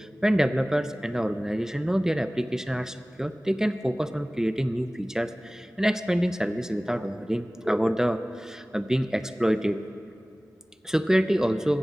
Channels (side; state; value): both; normal; correlation 0.98